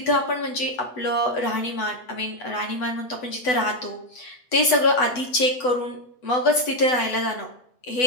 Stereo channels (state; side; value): late; right; 8.0 ms